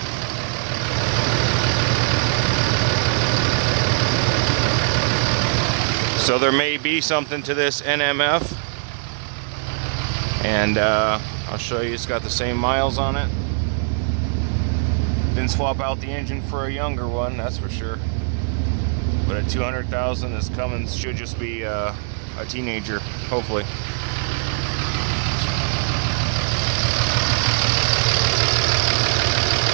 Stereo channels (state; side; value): silent; left; digital silence